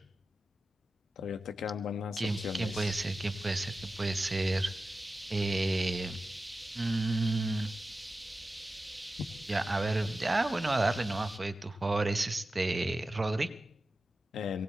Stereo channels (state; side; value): normal; both; correlation 0.93